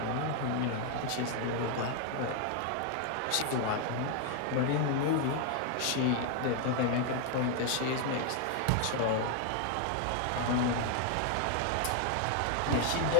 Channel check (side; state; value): both; different; correlation 0.00